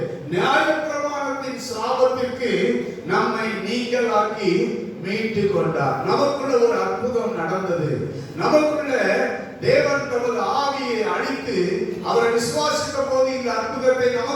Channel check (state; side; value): identical; both; correlation 1.00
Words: நியாயப்பிரமாணத்தின் சாபத்திற்கு நம்மை நீங்களாக்கி மீட்டு கொண்டார். நமக்குள்ள ஒரு அற்புதம் நடந்தது. நமக்குள்ள தேவன் தமது ஆவியை அளித்து அவரை விசுவாசித்த போது இந்த அற்புதத்தை